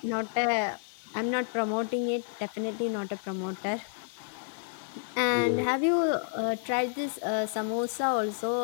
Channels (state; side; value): silent; right; digital silence